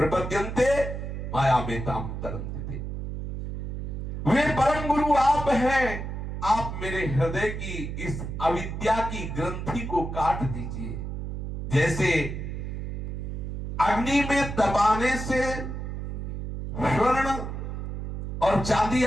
माया में ताम तरन्ते। वे परम गुरु आप हैं, आप मेरे हृदय की इस अविद्या की ग्रंथि को काट दीजिए। जैसे अग्नि में दबाने से स्वर्ण और चांदी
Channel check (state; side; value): noise; right; hum, 5 dB below the sound